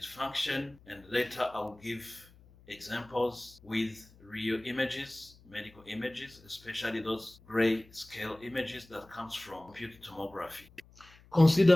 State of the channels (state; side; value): noise; left; hum, 25 dB below the sound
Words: function, and later I'll give examples with real images, medical images, especially those gray scale images that comes from computed tomography.